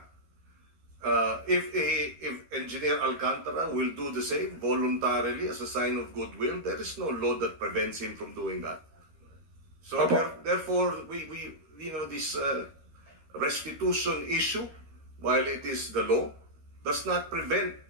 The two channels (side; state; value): left; late; 13 ms